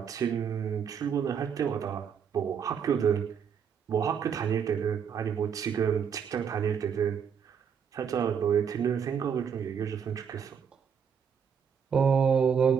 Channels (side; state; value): left; quieter; 7.2 dB